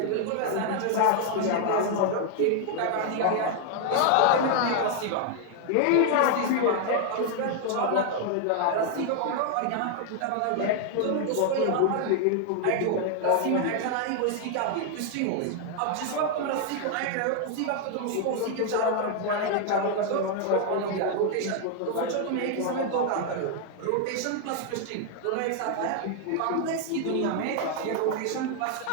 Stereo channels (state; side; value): different; both; correlation 0.00